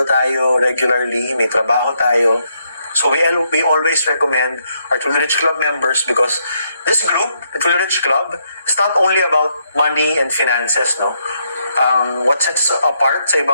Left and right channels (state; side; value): inverted; both; correlation -0.76